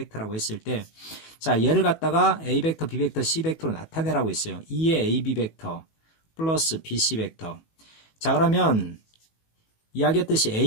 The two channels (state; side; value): late; right; 18 ms